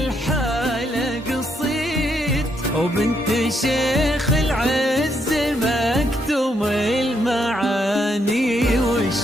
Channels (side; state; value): both; normal; correlation 0.76